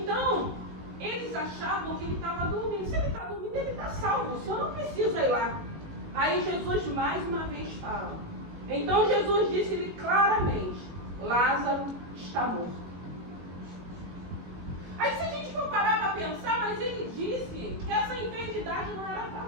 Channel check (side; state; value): left; late; 18 ms